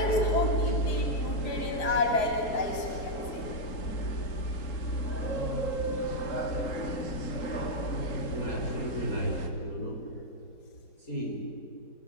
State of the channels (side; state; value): right; late; 4.7 ms